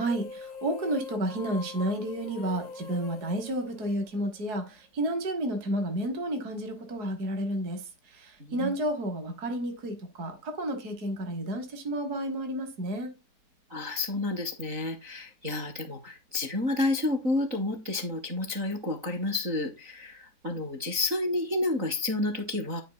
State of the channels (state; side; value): late; left; 3.9 ms